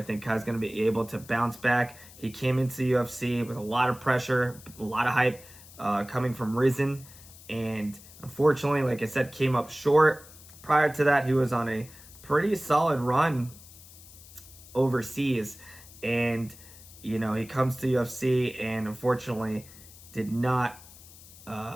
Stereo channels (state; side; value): noise; left; hiss, 20 dB below the sound